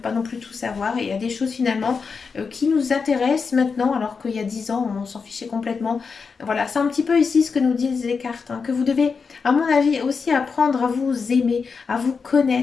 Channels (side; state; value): right; quieter; 5.3 dB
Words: non plus tout savoir et il y a des choses finalement qui nous intéressent maintenant alors qu'il y a 10 ans on s'en fichait complètement. Voilà, c'est un petit peu ici ce que nous disent les cartes, hein, que vous devez à mon avis aussi apprendre à vous aimer, à vous